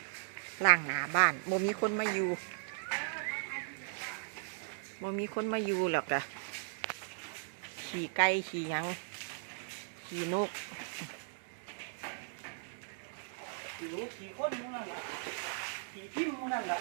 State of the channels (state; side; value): silent; left; digital silence